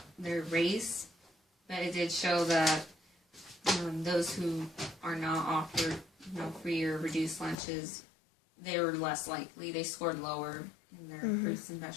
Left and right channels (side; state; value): right; drops out; at 7.6 s